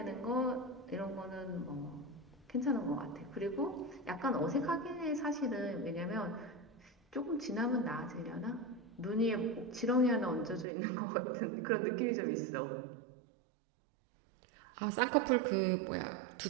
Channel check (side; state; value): left; drops out; at 10.7 s